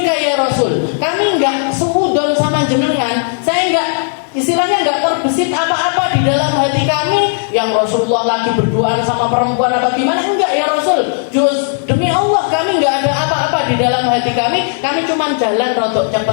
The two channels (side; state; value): right; silent; digital silence